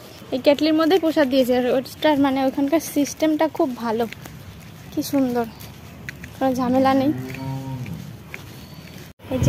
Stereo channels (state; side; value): identical; both; correlation 1.00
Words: এই কেটলির মধ্যেই প্রসাদ দিয়েছে। আর ওটার মানে ওইখানকার সিস্টেমটা খুব ভালো, কি সুন্দর, কোনো ঝামেলা নেই। এই